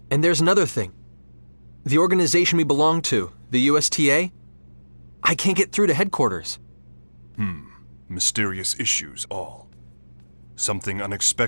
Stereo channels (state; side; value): inverted; both; correlation -1.00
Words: And there's another thing. The organization we belong to, the USTA, I can't get through to headquarters. Mysterious issues all. Something